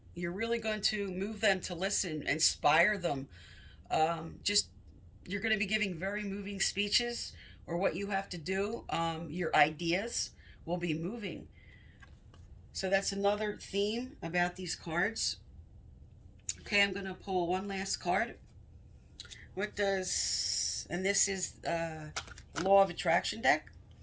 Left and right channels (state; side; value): identical; both; correlation 1.00